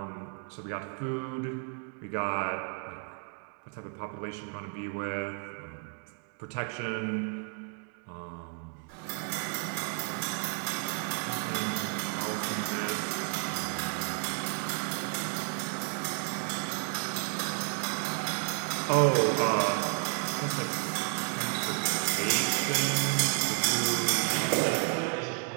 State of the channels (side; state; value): left; quieter; 38.9 dB